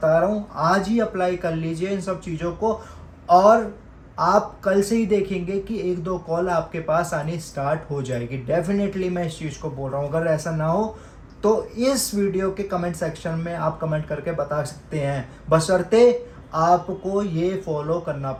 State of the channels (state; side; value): identical; both; correlation 1.00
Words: रहा हूँ, आज ही अप्लाई कर लीजिए इन सब चीज़ों को, और आप कल से ही देखेंगे कि 1-2 कॉल आपके पास आनी स्टार्ट हो जाएगी। डेफिनेटली मैं इस चीज़ को बोल रहा हूँ। अगर ऐसा ना हो तो इस वीडियो के कमेंट सेक्शन में आप कमेंट करके बता सकते हैं, बशर्ते आपको ये फॉलो करना